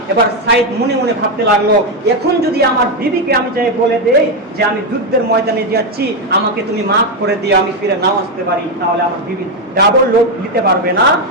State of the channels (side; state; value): both; normal; correlation 0.06